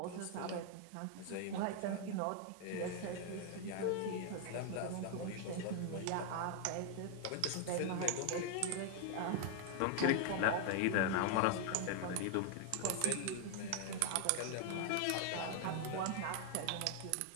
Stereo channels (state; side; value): different; both; correlation 0.00